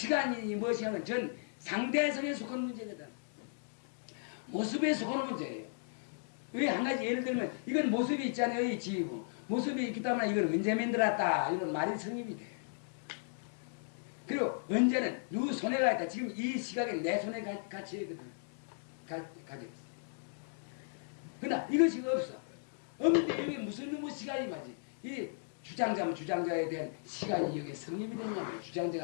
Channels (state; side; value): silent; right; digital silence